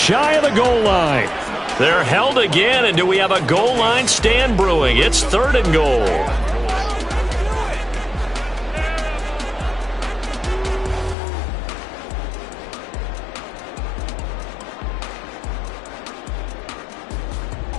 of the goal line. They're held again, and do we have a goal line stand brewing? It's 3rd and goal.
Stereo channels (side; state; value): right; drops out; at 11.2 s